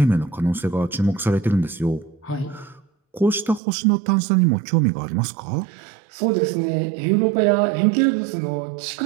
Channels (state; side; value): drops out; left; at 3.6 s